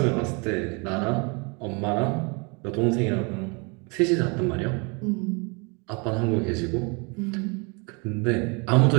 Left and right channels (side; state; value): left; quieter; 31.3 dB